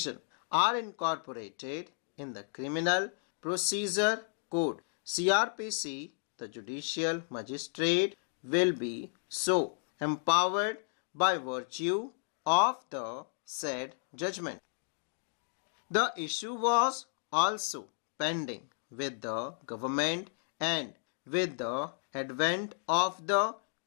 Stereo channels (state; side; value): silent; right; digital silence